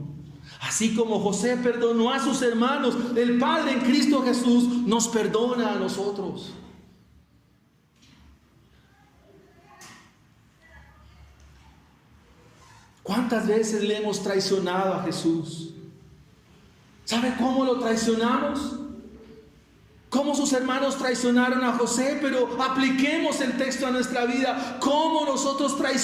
Así como José perdonó a sus hermanos, el Padre en Cristo Jesús nos perdona a nosotros. ¿Cuántas veces le hemos traicionado a Jesús? ¿Sabe cómo lo traicionamos? Cómo sus hermanos traicionaron a José, pero apliquemos el texto a nuestra vida. ¿Cómo nosotros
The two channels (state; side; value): identical; both; correlation 1.00